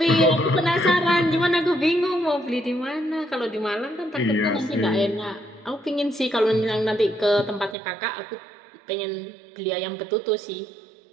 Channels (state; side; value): drops out; left; at 7.8 s